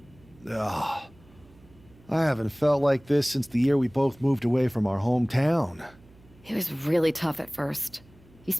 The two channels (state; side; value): noise; right; hum, 26 dB below the sound